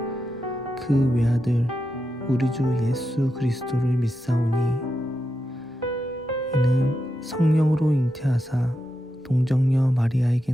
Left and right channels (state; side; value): normal; both; correlation 0.87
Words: 그 외아들 우리 주 예수 그리스도를 믿사오니 이는 성령으로 잉태하사 동정녀 마리아에게